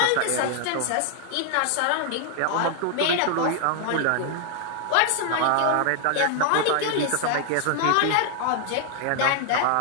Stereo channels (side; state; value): both; different; correlation 0.00